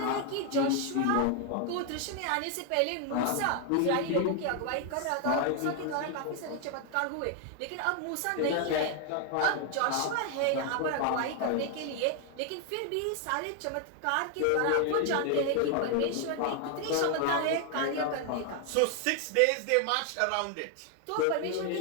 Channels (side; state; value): both; different; correlation 0.00